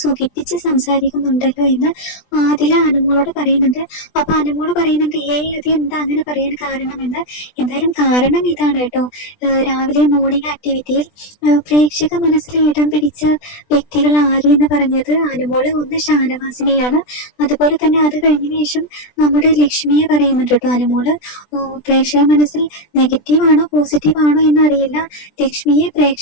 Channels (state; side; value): late; right; 20 ms